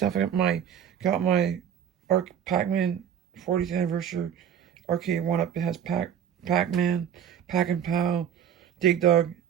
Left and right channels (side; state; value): left; quieter; 9.0 dB